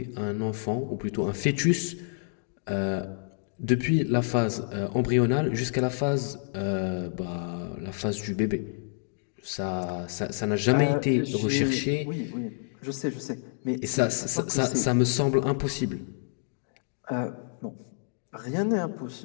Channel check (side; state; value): right; silent; digital silence